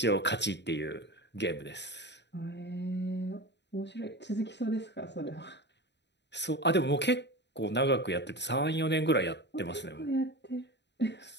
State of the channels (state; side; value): late; right; 0.51 ms